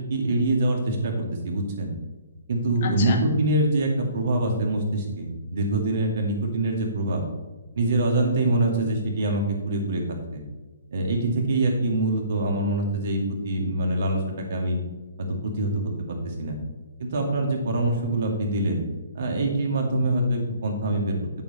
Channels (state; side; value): inverted; both; correlation -0.54